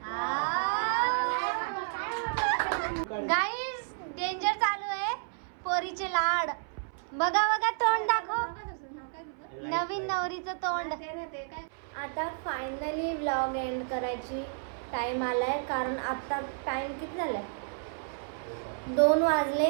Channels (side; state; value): left; silent; 57 dB below the other